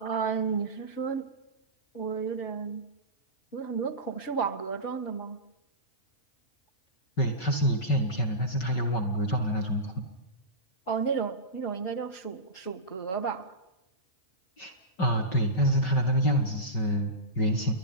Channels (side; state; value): right; late; 5.3 ms